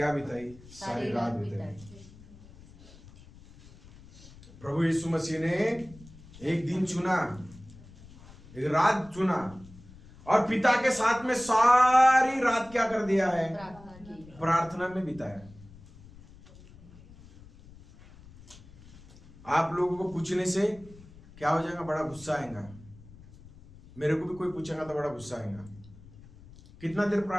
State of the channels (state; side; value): noise; left; rumble, 21 dB below the sound